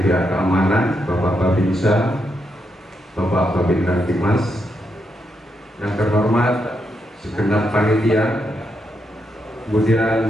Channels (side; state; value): both; normal; correlation 0.81